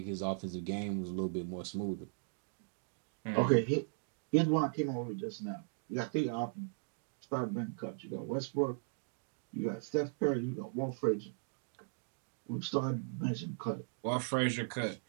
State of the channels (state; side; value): silent; left; digital silence